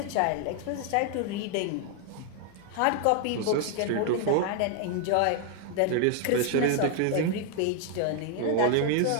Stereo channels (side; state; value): both; different; correlation 0.00